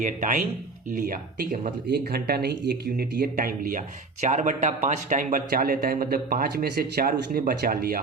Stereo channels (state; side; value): quieter; left; 3.9 dB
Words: टाइम लिया। ठीक है, मतलब 1 घंटा नहीं, 1 यूनिट ये टाइम लिया। 4/5 टाइम बचा लेता है, मतलब 5 में से 4 उसने बचा